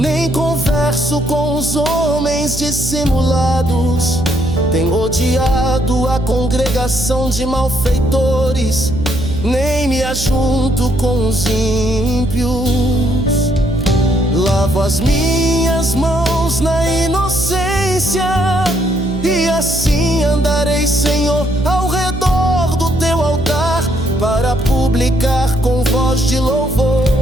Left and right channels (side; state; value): right; noise; hum, 8 dB below the sound